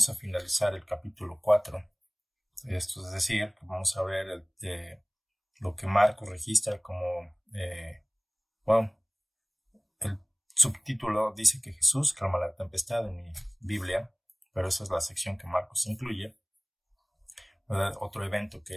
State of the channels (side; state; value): both; identical; correlation 1.00